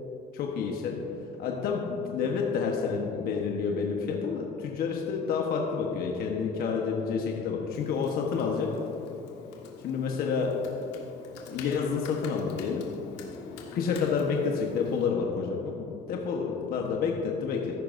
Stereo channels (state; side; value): quieter; right; 5.3 dB